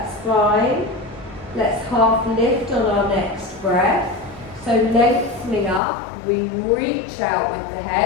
fine. Let's half lift on our next breath. So lengthening up, we reach out with the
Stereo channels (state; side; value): drops out; right; at 5.8 s